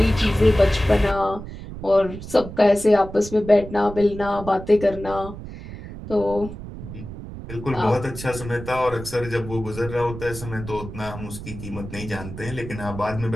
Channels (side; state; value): right; noise; rumble, 11 dB below the sound